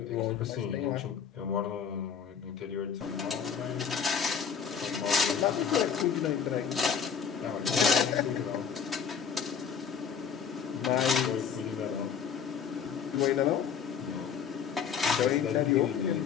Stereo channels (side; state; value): right; quieter; 7.1 dB